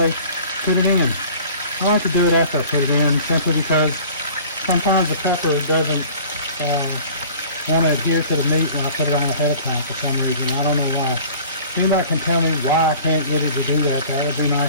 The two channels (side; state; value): both; inverted; correlation -0.45